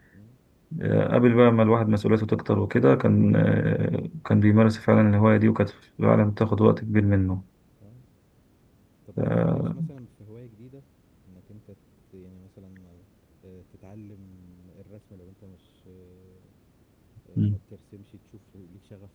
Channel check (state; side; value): identical; both; correlation 1.00